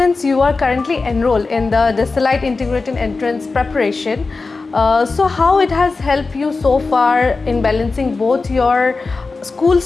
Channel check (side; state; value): right; quieter; 4.0 dB